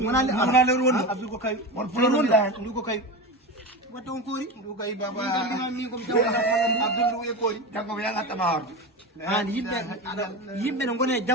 wona lewru wonɗo abdou ko kawi won puloɗon ndu ko kawi wadde on koori ndu kawi baba min komi tawɗa abdou ndu e koori janggo mi yagattama horde an yimɓe ne gone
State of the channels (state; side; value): normal; both; correlation 0.23